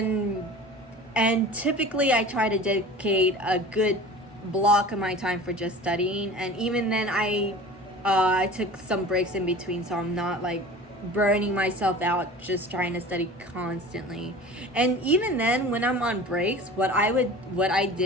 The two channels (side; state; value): both; normal; correlation 0.39